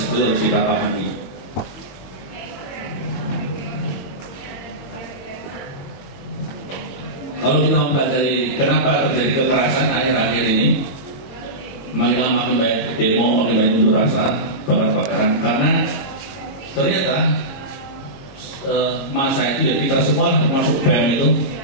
harus kita pahami. Kalau kita mempelajari kenapa terjadi kekerasan akhir-akhir ini, makin lama makin banyak demo, makin banyak unjuk rasa, bakar-bakaran, karena ternyata masa itu ya kita semua termasuk BEM itu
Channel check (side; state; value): right; late; 22 ms